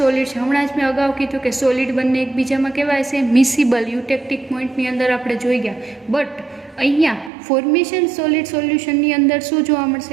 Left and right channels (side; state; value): left; drops out; at 7.3 s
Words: છે. હમણાં જ મેં અગાઉ કીધું કે સોલિડ બંને એકબીજામાં કહેવાય છે મિસિબલ, યુટેક્ટિક પોઈન્ટની અંદર આપણે જોઈ ગયા. બટ અહીંયા ફોર્મેશન સોલિડ સોલ્યુશનની અંદર શું જોવા